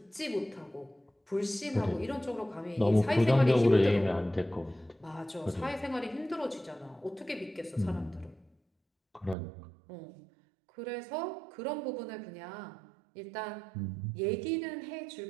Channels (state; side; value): drops out; left; at 9.3 s